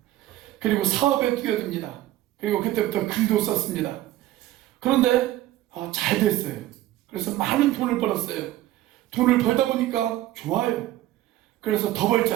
그리고 사업에 뛰어듭니다. 그리고 그때부터 글도 썼습니다. 그런데 잘 됐어요. 그래서 많은 돈을 벌었어요. 돈을 벌다 보니까 좋아요. 그래서 더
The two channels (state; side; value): quieter; left; 14.7 dB